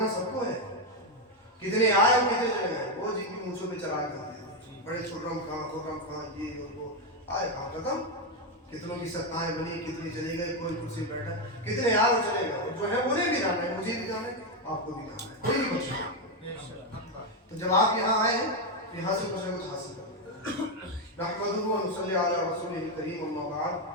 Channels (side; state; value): both; normal; correlation 0.06